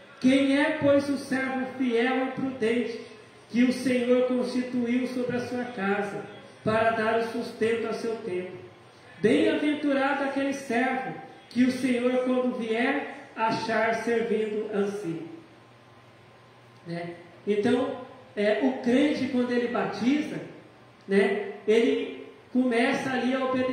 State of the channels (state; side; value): identical; both; correlation 1.00